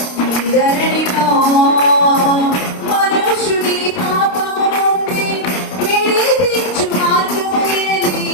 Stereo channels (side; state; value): right; late; 29 ms